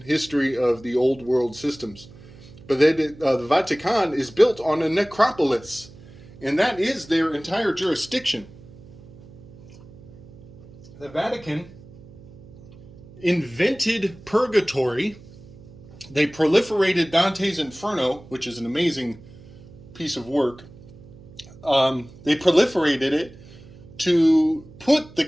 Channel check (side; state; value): right; noise; hum, 20 dB below the sound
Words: history of the old world systems. But the Vatican is built on a necropolis, and that is their entire jurisdiction. The Vatican invented purgatory. They proliferated Dante's Inferno, which is an amazing piece of work. They proliferated it to put the